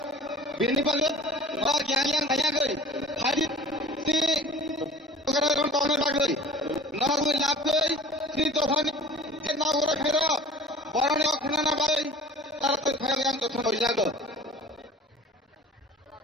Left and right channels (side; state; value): both; normal; correlation 0.44